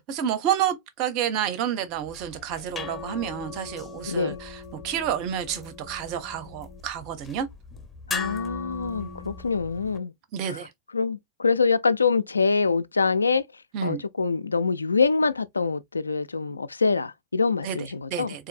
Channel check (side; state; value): both; inverted; correlation -0.60